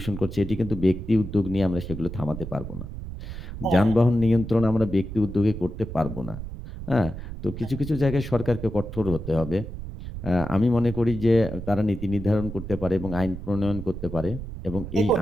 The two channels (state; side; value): noise; right; rumble, 9 dB below the sound